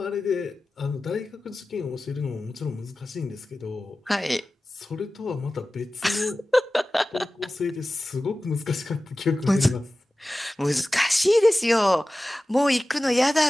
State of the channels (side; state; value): both; normal; correlation 0.96